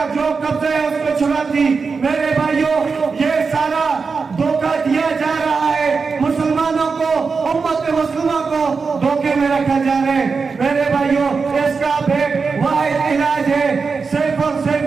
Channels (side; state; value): left; quieter; 4.9 dB